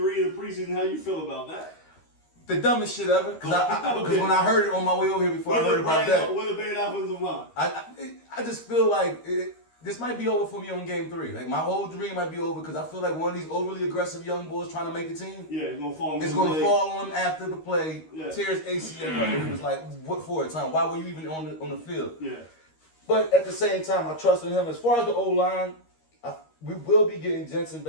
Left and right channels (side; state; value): right; late; 13 ms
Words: of the preseason. How you feel about that? the dumbest shit ever. Because when I heard it on my way over here before I heard about that, With a bad offensive line. I just feel like this might be over for me on Game 3. Like my whole dream might be over because I feel like one of these overly aggressive young boys trying to make the team. Yeah, it's gonna fall. It's gonna fall on him after the play. Yeah. Tears ACL up, and it was like, what for? Time? Why were you even on the field? Yeah. But at the same time, I trust in him. As far as the O-line, we will be getting Jensen